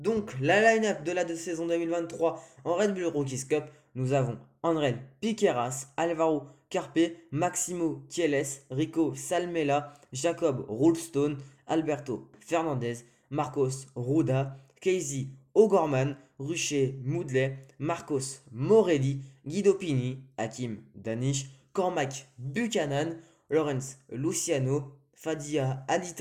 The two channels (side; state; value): both; identical; correlation 1.00